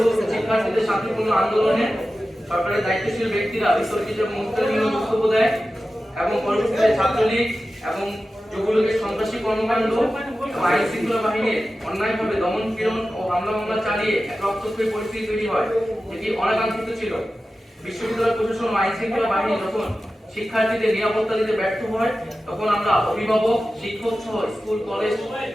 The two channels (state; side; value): normal; both; correlation 0.94